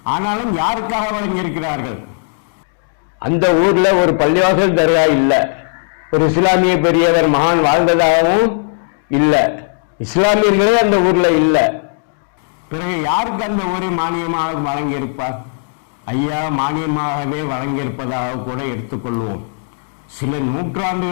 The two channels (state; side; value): silent; right; digital silence